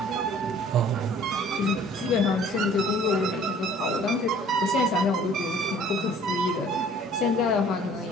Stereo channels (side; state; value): both; normal; correlation 0.53